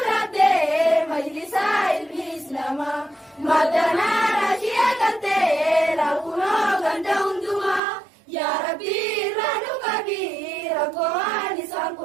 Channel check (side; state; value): left; drops out; at 7.8 s